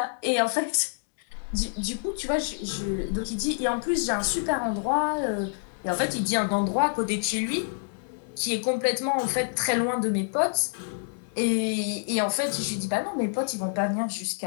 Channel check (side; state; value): right; silent; digital silence